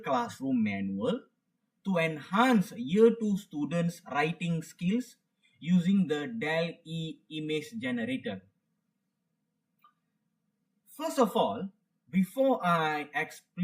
Classroom Manual to Enhance Year 2 Students' Writing Skills using the DALL Image Generator. First of all, before I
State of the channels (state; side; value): identical; both; correlation 1.00